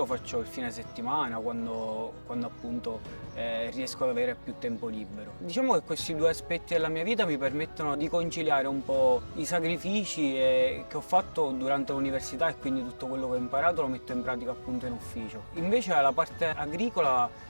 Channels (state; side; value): inverted; both; correlation -1.00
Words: faccio il fine settimana quando appunto riesco ad avere più tempo libero. Diciamo che questi due aspetti della mia vita mi permettono di conciliare un po' i sacrifici che ho fatto durante l'università e quindi tutto quello che ho imparato lo metto in pratica appunto in ufficio. Invece la parte agricola